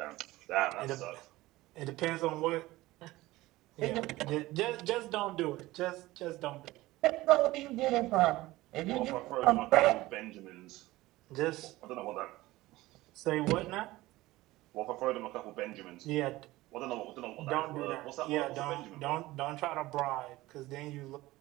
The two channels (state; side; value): quieter; left; 18.3 dB